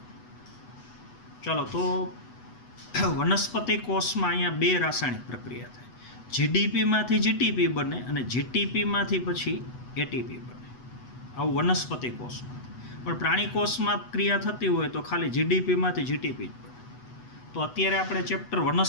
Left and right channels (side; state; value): right; late; 8.1 ms